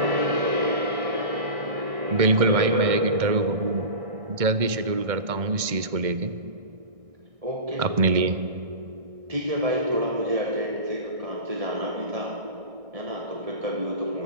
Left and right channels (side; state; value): left; late; 1.6 ms